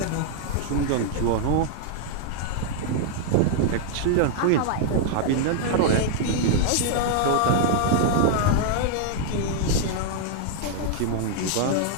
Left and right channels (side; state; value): both; different; correlation 0.00